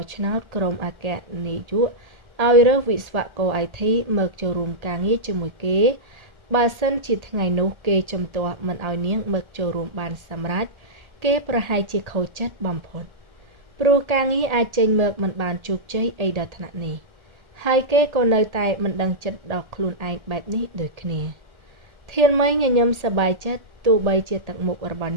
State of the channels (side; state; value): left; late; 1.8 ms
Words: ះឆ្នោតក្រុមអគ្គនាយកឲ្យរើសវិស្វករ IT មកចូលរួមការងារជាមួយគេបើសិនជាថ្ងៃនោះគេជំទាស់មិនឲ្យនាងមកចូលរួមបានសម្រេចគេប្រហែលជាខូចចិត្តបំផុតព្រោះការងារអាចចេញមកមិនបានជោគជ័យអីដល់ថ្នាក់នេះហើយគេក៏នៅតែមិនដឹងចិត្តដល់ខ្លួនឯងបែបនេះដូចគ្នាធានមីញញឹមសប្បាយចិត្តទោះបីជាទឹកមុខរបស់